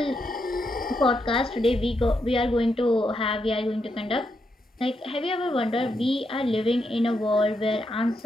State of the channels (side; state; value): both; normal; correlation 0.81